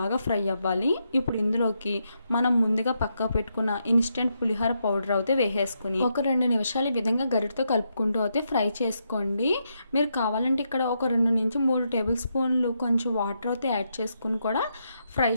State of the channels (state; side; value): inverted; both; correlation -0.81